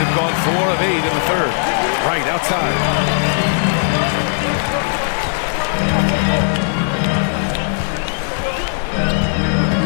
gone 4 of 8 in the third. Right outside.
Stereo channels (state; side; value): silent; right; 56 dB below the other